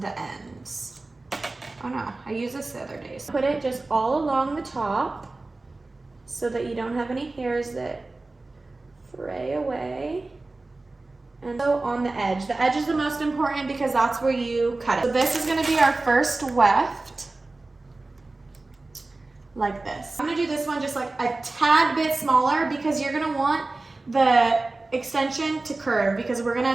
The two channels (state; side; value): quieter; left; 3.2 dB